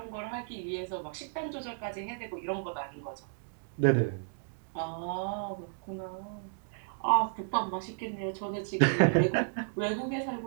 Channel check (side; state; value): left; silent; digital silence